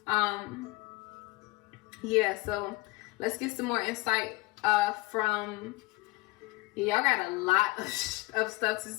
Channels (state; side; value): quieter; right; 22.2 dB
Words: Yeah, so let's get some more insight from, y'all got a lot of stuff to